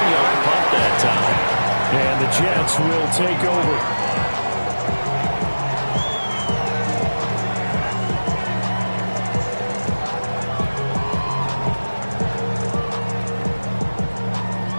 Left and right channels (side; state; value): both; inverted; correlation -1.00